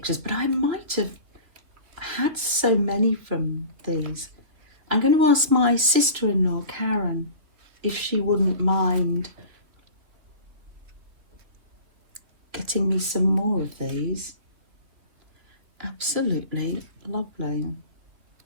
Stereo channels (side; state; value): left; late; 3.0 ms